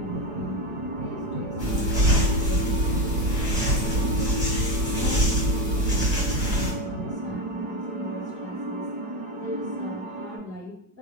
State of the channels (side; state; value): left; late; 4.8 ms